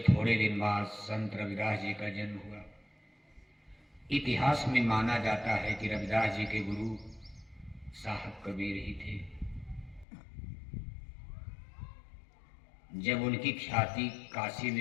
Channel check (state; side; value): drops out; right; at 10.1 s